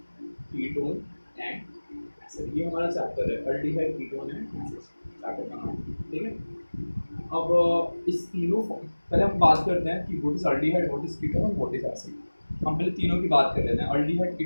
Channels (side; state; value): both; inverted; correlation -1.00